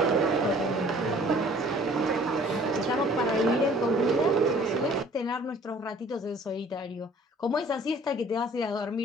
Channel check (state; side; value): normal; both; correlation 0.53